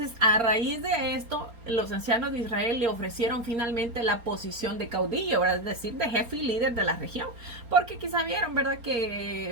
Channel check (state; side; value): late; left; 4.3 ms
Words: a raíz de esto, los ancianos de Israel le ofrecieron finalmente la posición de caudillo, ¿verdad? Es decir, de jefe y líder de la región, porque quizá vieron, ¿verdad?